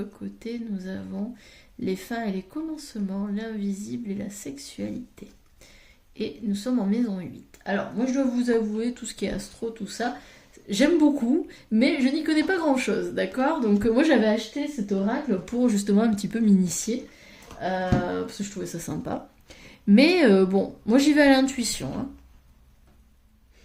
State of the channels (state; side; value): identical; both; correlation 1.00